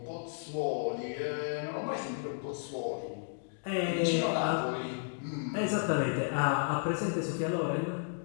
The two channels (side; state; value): right; silent; digital silence